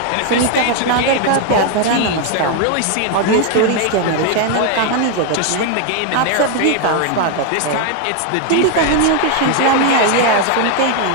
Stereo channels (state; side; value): different; both; correlation 0.01